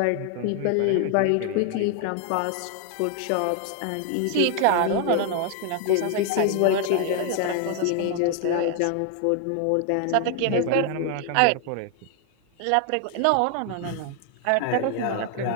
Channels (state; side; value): different; both; correlation 0.00